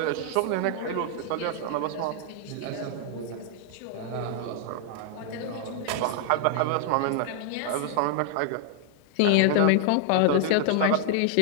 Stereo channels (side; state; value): both; different; correlation 0.00